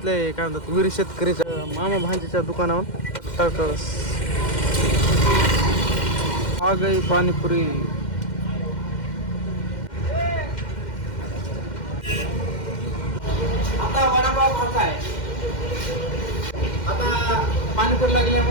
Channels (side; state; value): right; late; 2.1 ms